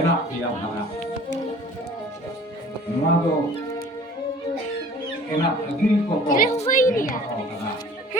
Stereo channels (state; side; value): normal; both; correlation 0.48